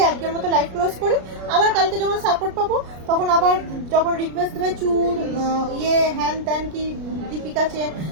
আজকের মতো লাইভ ক্লোজ করি। আবার কালকে যখন সাপোর্ট পাবো তখন আবার যখন রিকোয়েস্ট দেবে চুর হ্যান ত্যান কি দীপিকা চেন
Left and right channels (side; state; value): left; late; 33 ms